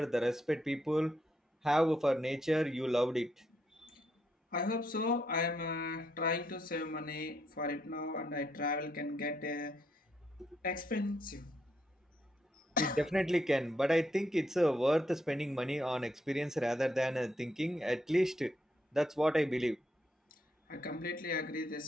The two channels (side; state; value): both; normal; correlation 0.77